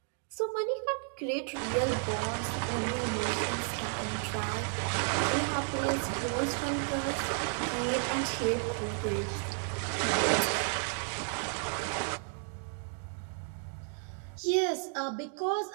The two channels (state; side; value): silent; left; 56 dB below the other